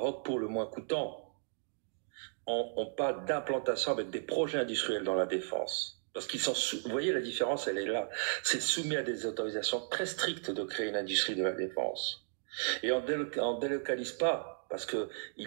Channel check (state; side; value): silent; left; digital silence